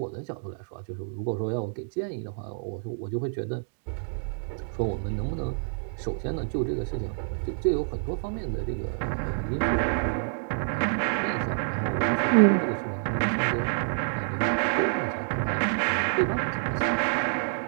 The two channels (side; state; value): left; silent; digital silence